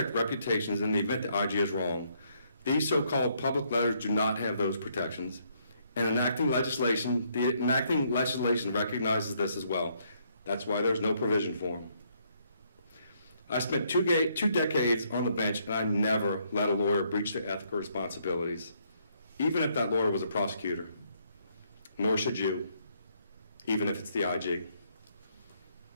reputations in the event the IG is wrong. These so-called public letters do not have those protections. And the enacting legislation recognizes this as well. That's why there's no provision for them. I spent two decades on the bench, and I never let a lawyer breach their ethical responsibilities, even if that lawyer was a prosecutor. Nor should you, even if it's the IG.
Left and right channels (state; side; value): inverted; both; correlation -0.71